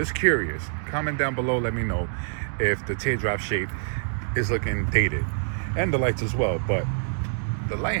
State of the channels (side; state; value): left; silent; digital silence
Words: curious. Comment down below, let me know if the teardrop shape is looking dated. And the lights as well. But the light